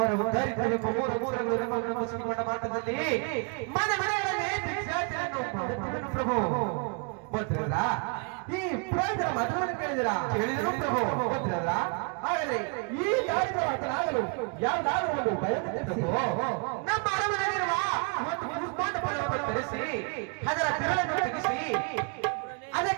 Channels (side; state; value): left; quieter; 36.8 dB